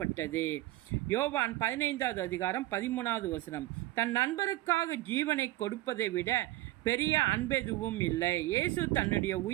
யோவான் 15வது அதிகாரம் 13வது வசனம். தன் நண்பருக்காக ஜீவனை கொடுப்பதை விட பெரிய அன்பெதுவும் இல்லை. இயேசு தன்னுடைய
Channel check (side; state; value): left; quieter; 17.2 dB